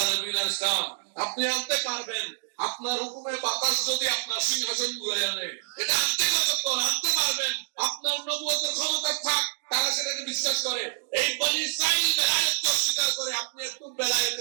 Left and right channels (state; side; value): silent; left; digital silence